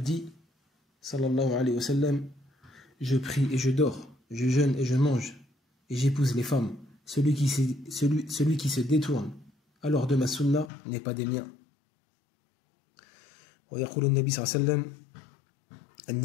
dit sallallahu alayhi wa sallam, je prie et je dors, je jeûne et je mange et j'épouse les femmes. Celui qui se détourne alors de ma sunna n'est pas des miens. ويقول النبي صلى الله عليه وسلم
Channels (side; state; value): right; drops out; at 10.7 s